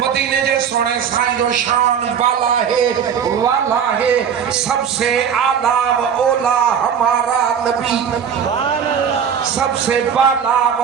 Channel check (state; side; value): quieter; left; 7.7 dB